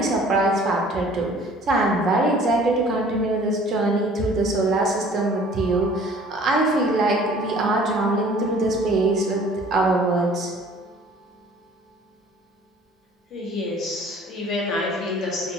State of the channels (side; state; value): both; normal; correlation 0.51